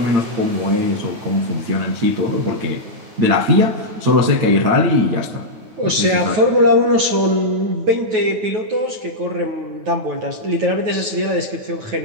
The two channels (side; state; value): left; late; 9.3 ms